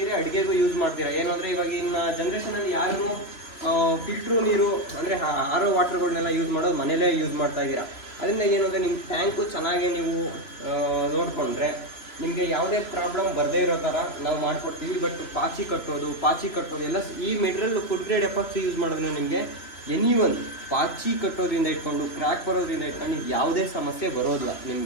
ಅಡುಗೆಗೂ ಯೂಸ್ ಮಾಡ್ತೀರಾ. ಏನು ಅಂದರೆ ಇವಾಗಿನ ಜನ್ರೇಷನಲ್ಲಿ ಯಾರು ಫಿಲ್ಟ್ರು ನೀರು ಅಂದರೆ ಆರ್ ಒ ವಾಟರ್ಗಳನ್ನೆಲ್ಲ ಯೂಸ್ ಮಾಡೋದು ಮನೇಲೇ ಯೂಸ್ ಮಾಡ್ತಾ ಇದ್ದೀರಾ. ಅದರಿಂದ ಏನು ಅಂದರೆ ನಿಮ್ಮ ಟ್ಯಾಂಕು ಚೆನ್ನಾಗಿ ನೀವು ನೋಡಿಕೊಂಡ್ರೆ ನಿಮಗೆ ಯಾವುದೇ ಪ್ರಾಬ್ಲಮ್ ಬರದೇ ಇರೋ ಥರ ನಾವು ಮಾಡಿಕೊಡ್ತೀವಿ. ಬಟ್ ಪಾಚಿ ಕಟ್ಟೋದು ಎಲ್ಲ ಈ material food grade epoxy use ಮಾಡೋದ್ರಿಂದ ನಿಮಗೆ ಪಾಚಿ ಕಟ್ಟೋದ್ರಿಂದ ಇಟ್ಕೊಂಡು ಕ್ರ್ಯಾಕ್ ಬರೋದ್ರಿಂದ ಇಟ್ಕೊಂಡು ಯಾವುದೇ ಸಮಸ್ಯೆ ಬರೋದಿಲ್ಲ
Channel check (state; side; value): late; right; 3.0 ms